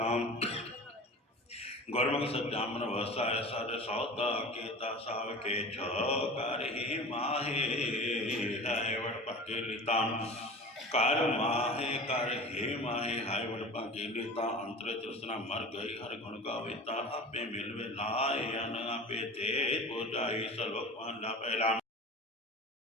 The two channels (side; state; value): both; normal; correlation 0.36